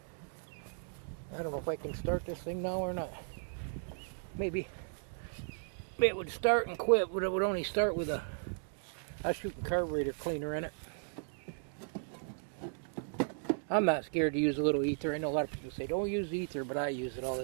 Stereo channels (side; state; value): left; silent; digital silence